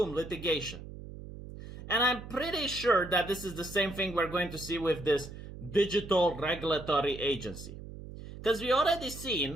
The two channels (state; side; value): noise; right; hum, 13 dB below the sound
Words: litigation. And I'm pretty sure that this is the same thing we're going to see with this digital regulatory agency. Because we already